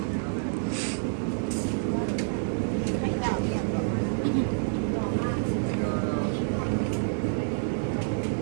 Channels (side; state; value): left; silent; digital silence